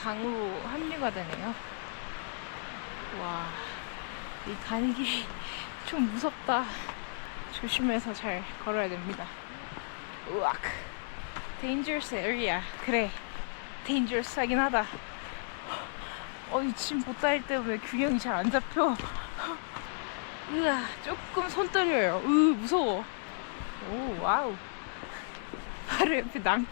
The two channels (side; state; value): right; silent; digital silence